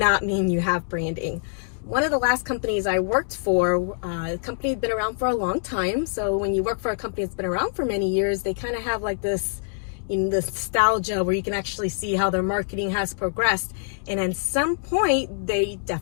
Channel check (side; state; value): right; silent; 62 dB below the other